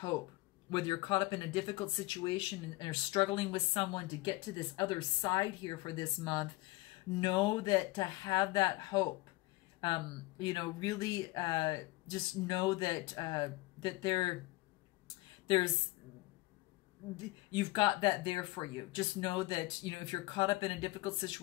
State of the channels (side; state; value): right; quieter; 21.2 dB